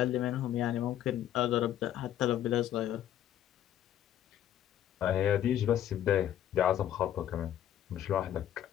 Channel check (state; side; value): quieter; right; 11.3 dB